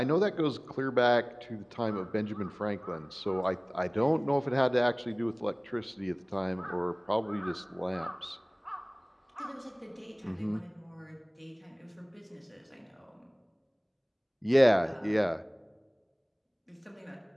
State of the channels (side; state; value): both; identical; correlation 1.00